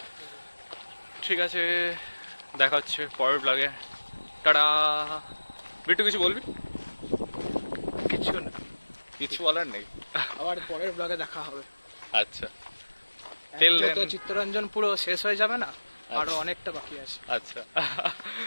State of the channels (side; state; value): both; inverted; correlation -1.00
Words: ঠিক আছে, দেখা হচ্ছে পরের ব্লগে। টাটা। বিট্টু কিছু বলবি? কিছু না, কিছু বলার নেই। আবার পরের ব্লগে দেখা হবে। আচ্ছা, Till then. তো চিত্তরঞ্জন পুরো শেষ হয়ে যাবে না, আরো অনেকটা বাকি আছে। আচ্ছা।